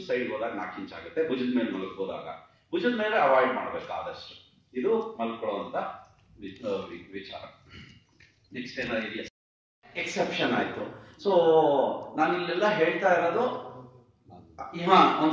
ಸೈಡ್ ಹೋದಾಗ 4 ಇಂಚ್ ಆಗುತ್ತೆ. ಭುಜದ ಮೇಲೆ ಮಲಗ್ಬೋದಾಗ ಭುಜದ ಮೇಲೆ ಅವಾಯ್ಡ್ ಮಾಡ್ಬೇಕು ಆದಷ್ಟು. ಇದು ಮಲ್ಕೊಳ್ಳುವಂತ ವಿಚಾರ. ನೆಕ್ಸ್ಟ್ ಏನಾದ್ರು ಇದೆಯಾ? ಎಕ್ಸೆಪ್ಷನ್ ಆಯ್ತು. ಸೊ ನಾನು ಇಲ್ಲೆಲ್ಲ ಹೇಳ್ತಾ ಇರೋದು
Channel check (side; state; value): both; identical; correlation 1.00